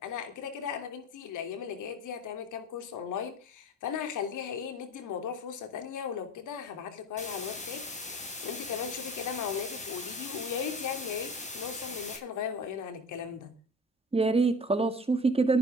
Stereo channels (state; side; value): normal; both; correlation 0.38